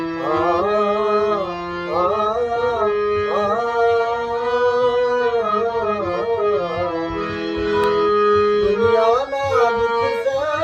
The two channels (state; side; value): identical; both; correlation 1.00